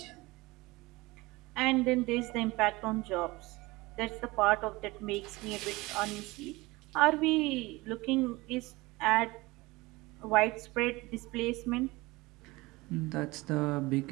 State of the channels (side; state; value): left; quieter; 21.8 dB